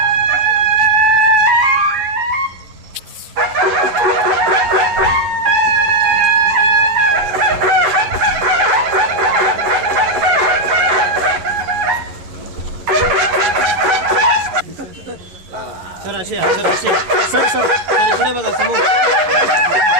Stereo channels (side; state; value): left; late; 11 ms